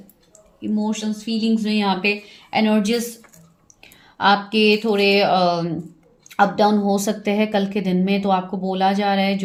इमोशंस, फीलिंग्स में यहाँ पे एनर्जीज आपके थोड़े अप डाउन हो सकते हैं कल के दिन में। तो आपको बोला जा रहा है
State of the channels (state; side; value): identical; both; correlation 1.00